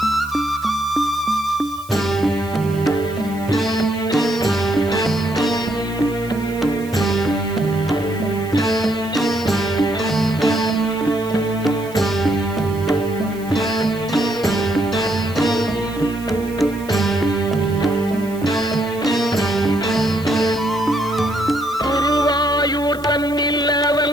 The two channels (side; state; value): right; noise; hiss, 21 dB below the sound